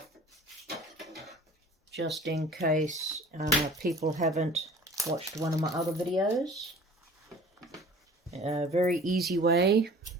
just in case people haven't watched one of my other videos. A very easy way.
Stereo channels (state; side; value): normal; both; correlation 0.46